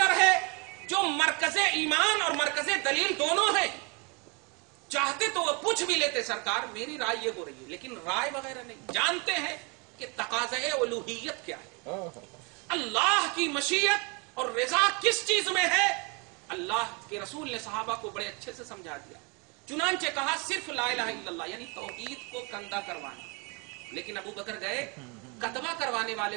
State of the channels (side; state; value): left; quieter; 31.3 dB